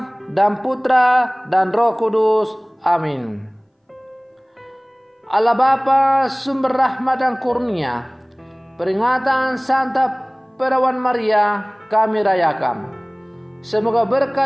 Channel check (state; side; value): identical; both; correlation 1.00